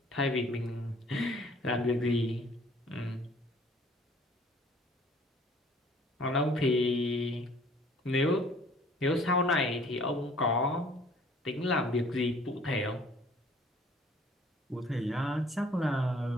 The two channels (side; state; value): both; normal; correlation 0.55